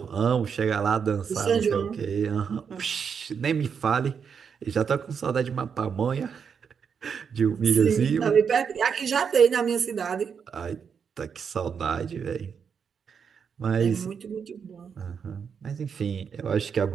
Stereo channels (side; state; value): left; quieter; 6.7 dB